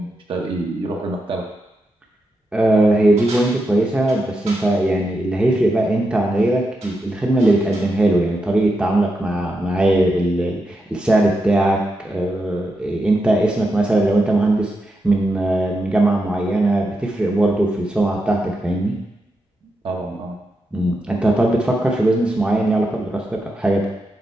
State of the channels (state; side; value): normal; both; correlation 0.86